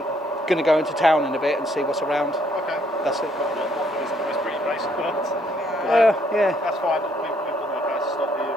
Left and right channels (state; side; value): normal; both; correlation 0.68